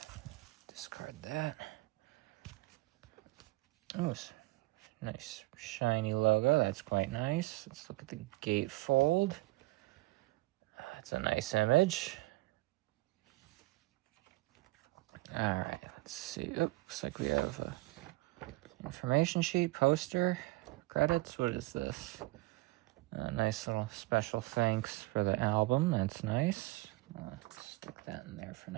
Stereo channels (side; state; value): left; quieter; 21.0 dB